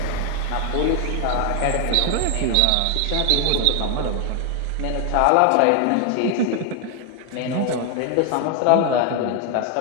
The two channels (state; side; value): different; both; correlation 0.01